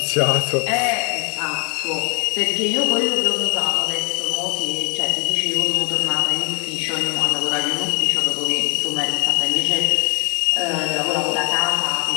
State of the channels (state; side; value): quieter; right; 35.0 dB